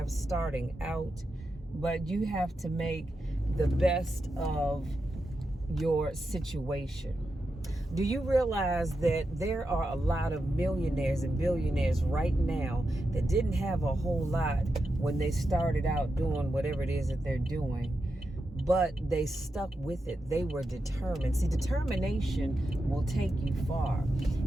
starting out, but you have to make the best of your situation. Do you realize that there are a lot of millionaires and billionaires right now that didn't have a whole lot when they started out doing whatever it is that they're doing, but they stuck with it? They were determined. See, determination will take you far.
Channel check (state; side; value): normal; both; correlation 0.88